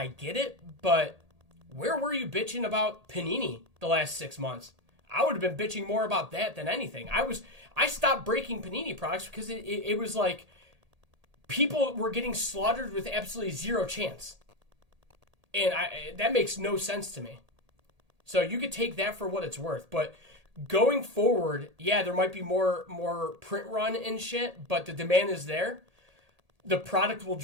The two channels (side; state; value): left; late; 1.8 ms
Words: get it. But where were you bitching about Panini the last 6 months? I would have been bitching more about that than anything. I stopped breaking Panini products because it was like people were getting slaughtered with absolutely zero chance. And that makes no sense to me. So you could take that for what it's worth. But going forward, yeah, there might be more print run and shit, but the demand is there. The product will